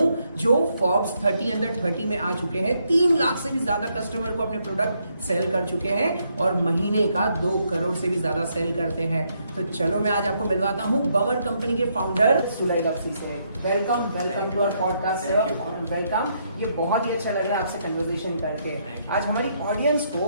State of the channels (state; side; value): inverted; both; correlation -0.75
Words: जो फोर्ब्स 30 अंडर 30 में आ चुके हैं, 3 लाख से भी ज्यादा कस्टमर को अपने प्रोडक्ट सेल कर चुके हैं और महीने का 2 करोड़ से भी ज्यादा सेल करते हैं। तो चलो मैं आज आपको मिलवाता हूं बवर कंपनी के फाउंडर सुलय लवसी से। Welcome to our podcast sir, welcome. ये बहुत ही अच्छा लग रहा है आपसे कन्वर्सेशन करके। आज हमारी ऑडियंस